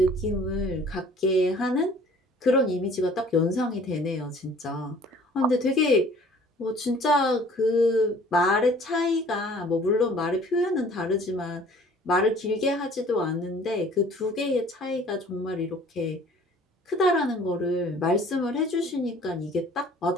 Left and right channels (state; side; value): normal; both; correlation 0.52